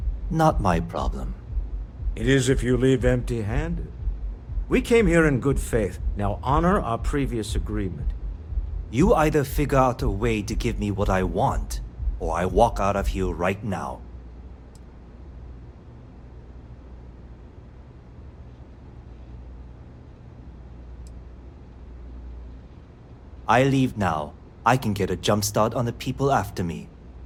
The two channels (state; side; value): identical; both; correlation 1.00